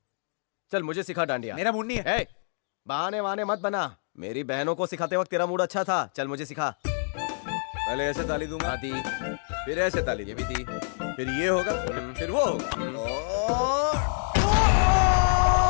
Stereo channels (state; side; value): silent; right; digital silence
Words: चल मुझे सिखा डांडिया। मेरा मूड नहीं है। बहाने वहाने मत बना। मेरी बहनों को सिखाते वक्त तेरा मूड अच्छा था। चल मुझे सिखा। पहले ऐसे ताली दूंगा, दी, फिर ऐसे ताली, ये भी दी, फिर ये होगा, फिर वो होगा।